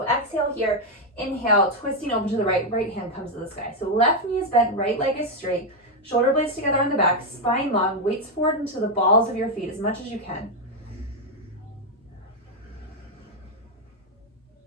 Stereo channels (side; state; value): both; normal; correlation 0.03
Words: exhale here, inhale, twisting open to the right, right hand comes to the sky. So left knee is bent, right leg is straight, shoulder blades together on the back, spine long, weights forward into the balls of your feet as much as you can.